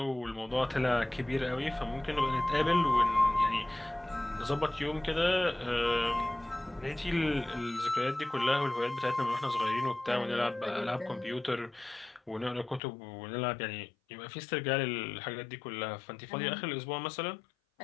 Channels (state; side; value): drops out; right; at 12.8 s